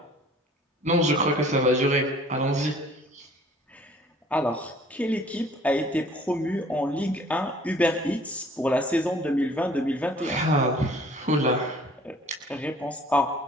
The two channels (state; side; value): normal; both; correlation 0.53